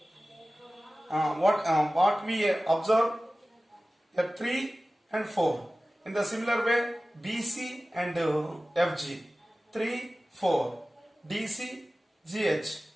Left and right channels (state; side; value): normal; both; correlation 0.96